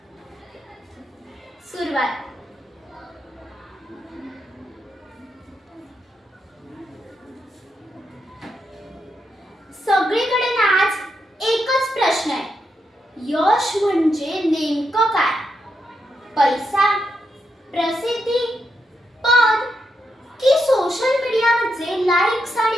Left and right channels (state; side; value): normal; both; correlation 0.83